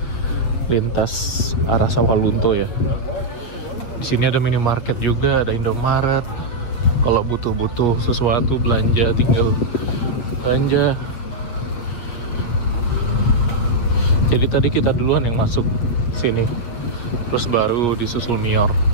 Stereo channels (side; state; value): right; late; 8.2 ms